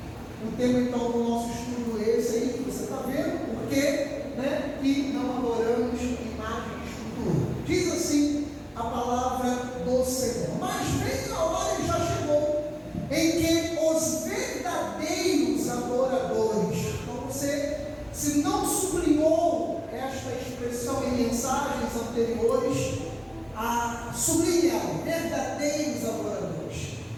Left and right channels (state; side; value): identical; both; correlation 1.00